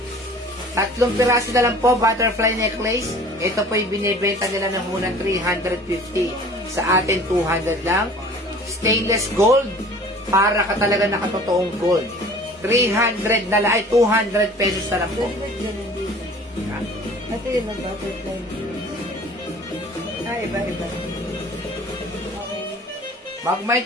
3 piraso na lang po, butterfly necklace. Ito po yung binibenta nila ng unang 350. Sa atin, 200 lang. Stainless gold. Para ka talaga nakatotoong gold. 300 na lang. Ay, 200 pesos na lang po. ha? Ito yun ang butterfly necklace. Iba. Okay. Mag-mind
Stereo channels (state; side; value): normal; both; correlation 0.47